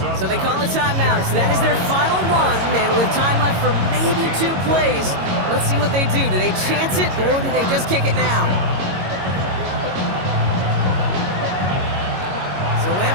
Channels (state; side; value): late; left; 22 ms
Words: So they call a timeout. So that is their final one. And with time left for maybe 2 plays, let's see what they do. Do they chance it or do they just kick it now? So